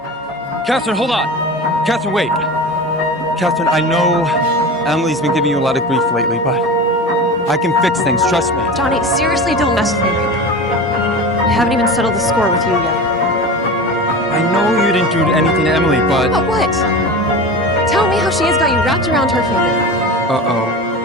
Katherine, hold on. Katherine, wait. Katherine, I know Emilee's been giving you a lot of grief lately, but I can fix things, trust me. Johnny, seriously, don't mess with me right now. I haven't even settled the score with you yet. I know you didn't do anything to Emilee, but... But what? Tell me how she has got you wrapped around her finger.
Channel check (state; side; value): normal; both; correlation 0.30